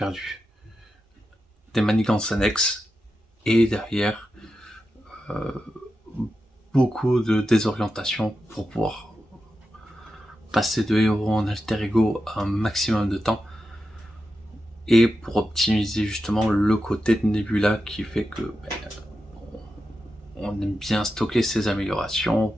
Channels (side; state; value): both; normal; correlation 0.89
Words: des manigances annexes, et derrière beaucoup de désorientation pour pouvoir passer de héros en alter ego un maximum de temps, et pour optimiser justement le côté de Nebula qui fait que on aime bien stocker ses améliorations